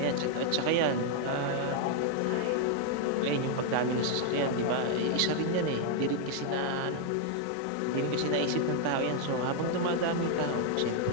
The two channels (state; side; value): different; both; correlation 0.00